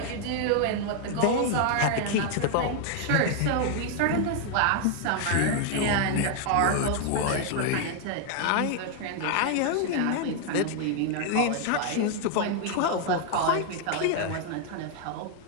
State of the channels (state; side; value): different; both; correlation 0.00